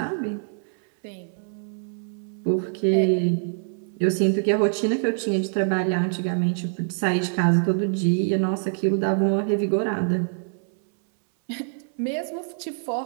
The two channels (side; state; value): left; silent; 62 dB below the other